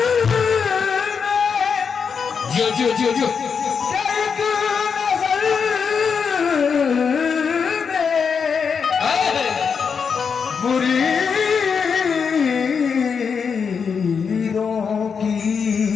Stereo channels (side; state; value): right; quieter; 6.1 dB